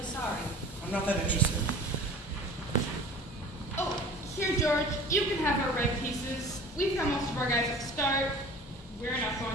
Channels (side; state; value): both; normal; correlation 0.43